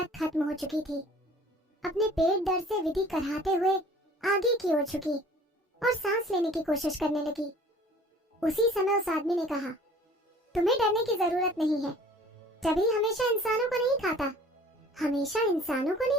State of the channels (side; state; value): both; normal; correlation 0.50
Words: खत्म हो चुकी थी। अपने पेट दर्द से विधि कराहते हुए आगे की ओर झुकी और सांस लेने की कोशिश करने लगी। उसी समय उस आदमी ने कहा, तुम्हें डरने की जरूरत नहीं है। टबी हमेशा इंसानों को नहीं खाता। हमेशा इंसानों को